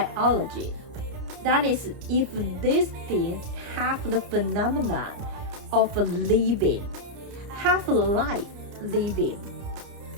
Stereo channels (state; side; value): late; left; 30 ms